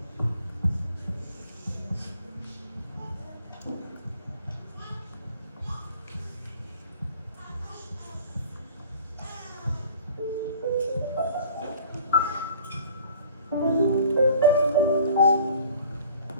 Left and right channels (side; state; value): both; inverted; correlation -0.50